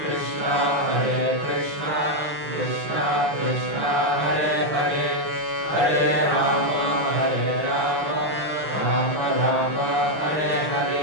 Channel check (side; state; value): left; late; 6.4 ms